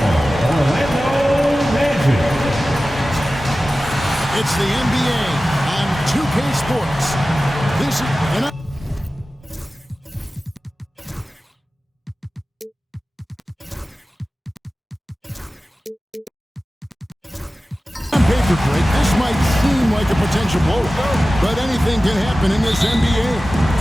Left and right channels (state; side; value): normal; both; correlation 0.96